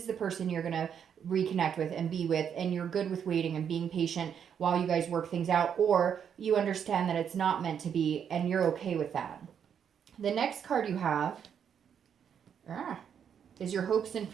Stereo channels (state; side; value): quieter; left; 8.1 dB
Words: the person you're going to reconnect with and be with, and you're good with waiting and being patient while you guys work things out, or you understand that it's not meant to be and you're okay with that. The next card you have is your hopes and